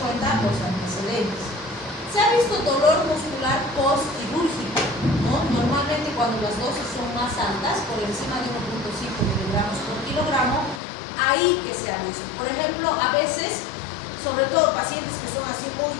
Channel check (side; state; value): right; drops out; at 10.8 s